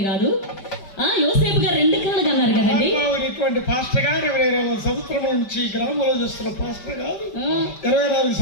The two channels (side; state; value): right; late; 5.1 ms